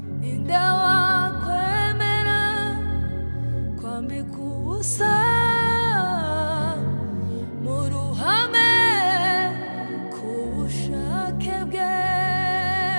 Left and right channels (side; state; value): both; inverted; correlation -1.00